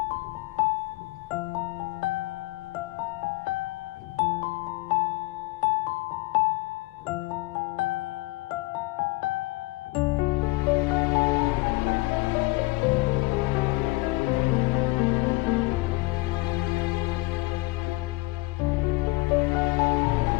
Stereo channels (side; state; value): right; quieter; 23.3 dB